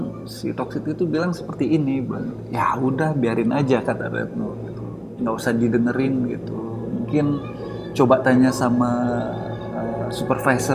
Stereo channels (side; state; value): both; identical; correlation 1.00